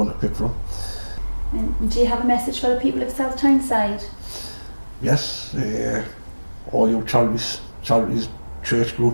to pick from. And do you have a message for the people of South Tyneside? Yes, all your charities, church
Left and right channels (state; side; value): inverted; both; correlation -1.00